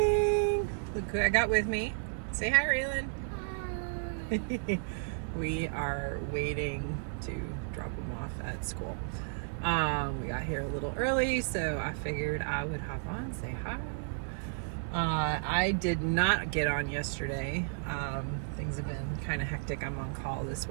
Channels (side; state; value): left; silent; digital silence